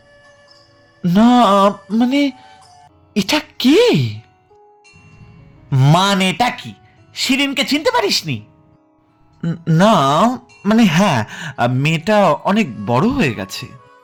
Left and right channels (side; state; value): both; identical; correlation 1.00